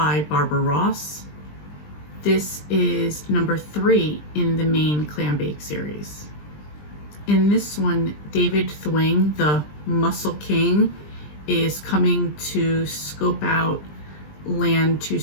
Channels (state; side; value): late; right; 20 ms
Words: Barbara Ross. This is number 3 in the main Clam Bake series. In this one, David Thwing, the Muscle King, is coming to scope out land to